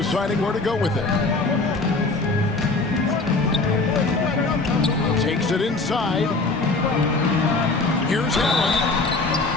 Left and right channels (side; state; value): right; quieter; 3.4 dB